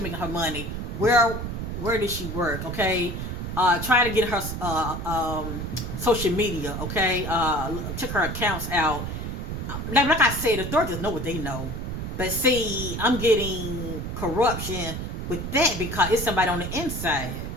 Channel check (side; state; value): right; noise; rumble, 5 dB below the sound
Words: making her money. Where does she work? Okay, try to get her social media. Okay, check her accounts out. Like I said, the authorities know what they know. But see, I'm getting corruption with that because it's somebody on the inside.